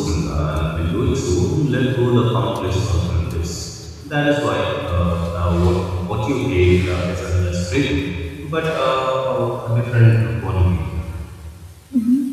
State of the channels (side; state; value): both; identical; correlation 1.00